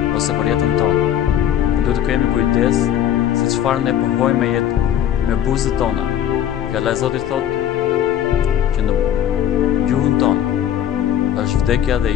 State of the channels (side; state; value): right; quieter; 10.6 dB